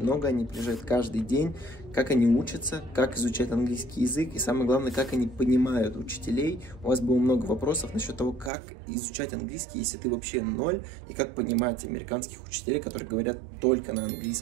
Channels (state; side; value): drops out; left; at 8.5 s